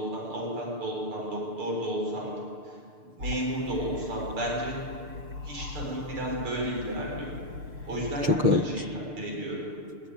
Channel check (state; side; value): late; left; 6.7 ms